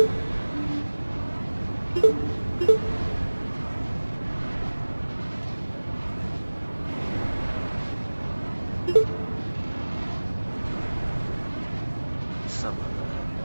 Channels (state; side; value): inverted; both; correlation -1.00